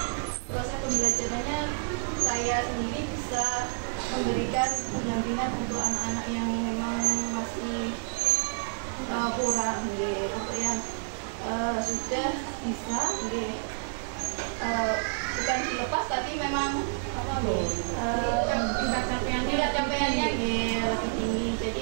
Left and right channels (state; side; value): silent; left; digital silence